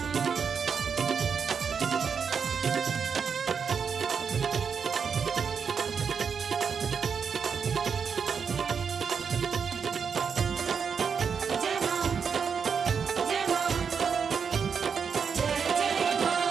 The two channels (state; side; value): quieter; left; 6.3 dB